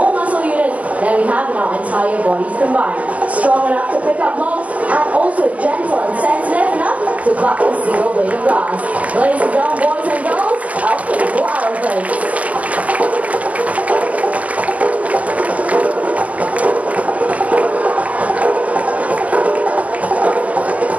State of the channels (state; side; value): late; left; 0.069 ms